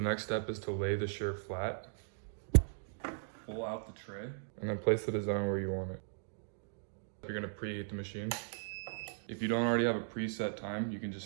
step is to lay the shirt flat. Pull out the tray and then place the design where you want it. You're gonna preheat the machine. If you don't already have a preset time, you can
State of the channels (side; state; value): left; silent; digital silence